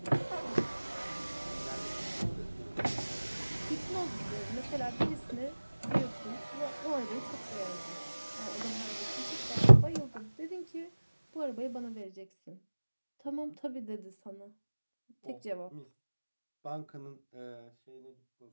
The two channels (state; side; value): inverted; both; correlation -1.00